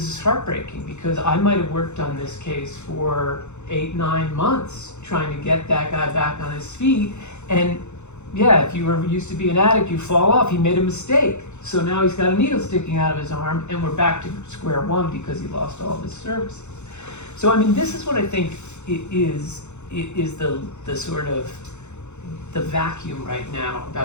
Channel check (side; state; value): right; late; 0.83 ms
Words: is heartbreaking because I might have worked on this case for 8-9 months trying to get that guy back on his feet, and yeah, if you were used to be an addict, you fall off. He made a mistake, so now he's got a needle sticking out of his arm, and we're back to square one because he lost all of his services. So I mean, this is what I think it is the sort of the vacuum right now